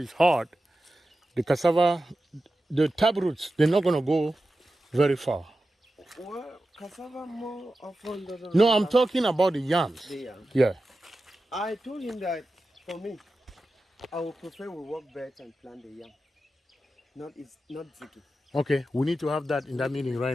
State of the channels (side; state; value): both; normal; correlation 0.92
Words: hard, the cassava, the taproots, they're not going to go very far. Well, cassava more often doesn't. No, I'm talking about the yams. The yams. Yeah. I told him that for me, I would prefer we work beds and plant the yam. Not ziggy. Okay, we need to have that in that meeting